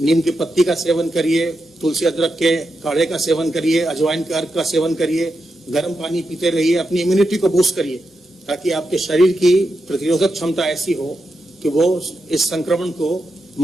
की पत्ती का सेवन करिए, तुलसी अदरक के काढ़े का सेवन करिए, अजवाइन के अर्क का सेवन करिए, गर्म पानी पीते रहिए, अपनी इम्यूनिटी को बूस्ट करिए, ताकि आपके शरीर की प्रतिरोधक क्षमता ऐसी हो कि वो इस संक्रमण को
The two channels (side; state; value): both; normal; correlation 0.86